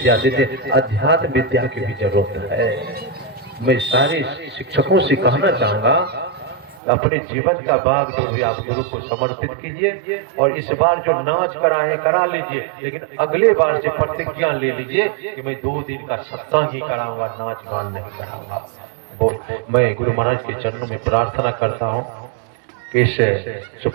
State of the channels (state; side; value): drops out; left; at 6.8 s